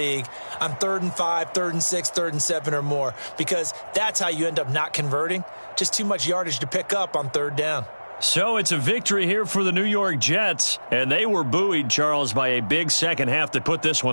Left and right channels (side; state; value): both; inverted; correlation -1.00